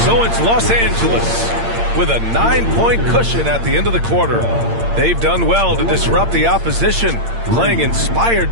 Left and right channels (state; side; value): late; left; 8.7 ms